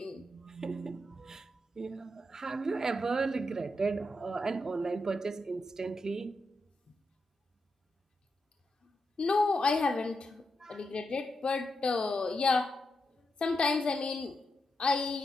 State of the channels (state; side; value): normal; both; correlation 0.85